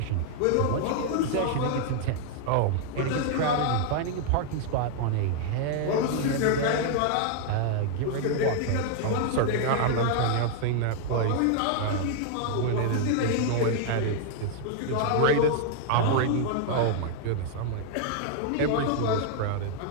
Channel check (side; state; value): both; different; correlation 0.00